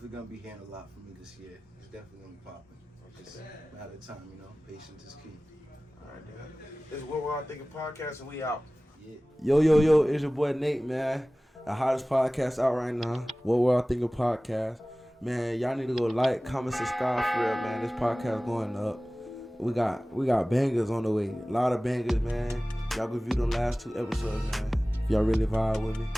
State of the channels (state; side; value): normal; both; correlation 0.98